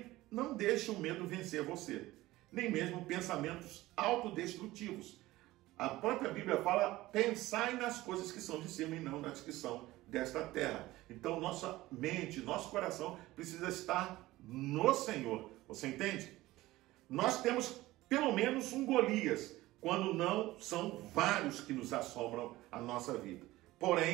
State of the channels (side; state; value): left; quieter; 17.7 dB